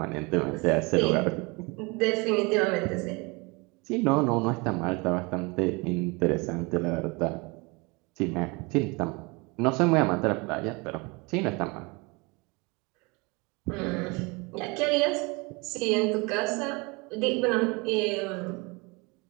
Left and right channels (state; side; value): quieter; left; 27.5 dB